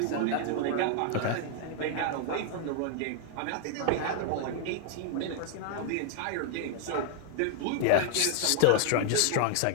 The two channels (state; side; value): different; both; correlation -0.01